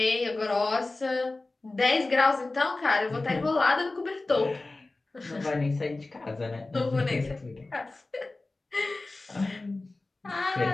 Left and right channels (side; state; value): right; quieter; 3.1 dB